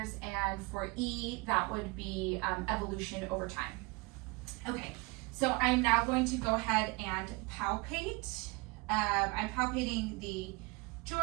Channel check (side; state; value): left; quieter; 26.9 dB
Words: and for E, that would be evolution over time. Okay, so I'm now going to go ahead and palpate. I'm palpating the